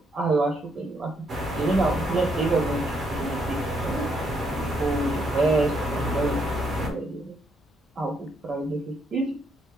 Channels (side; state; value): both; normal; correlation 0.74